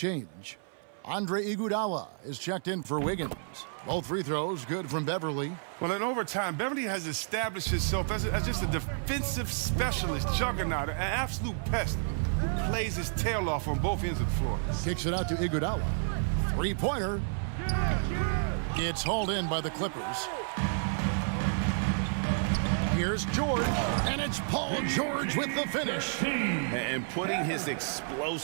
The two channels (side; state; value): left; silent; 57 dB below the other